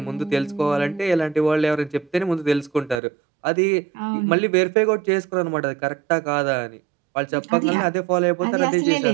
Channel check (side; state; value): left; drops out; at 3.0 s